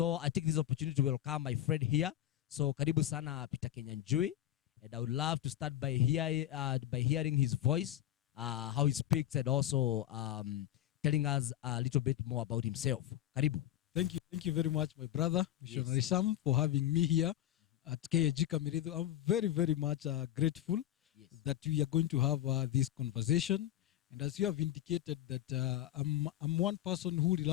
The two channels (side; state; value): right; quieter; 12.8 dB